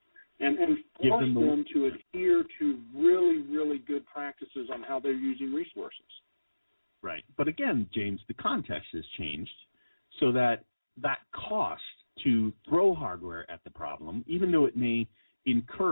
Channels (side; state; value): both; inverted; correlation -1.00